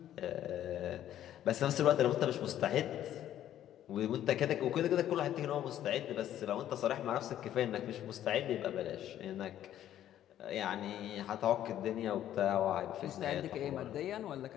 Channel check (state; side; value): quieter; right; 11.7 dB